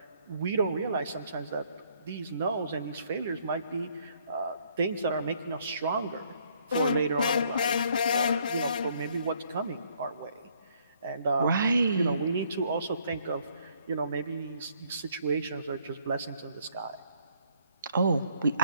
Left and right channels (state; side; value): inverted; both; correlation -0.66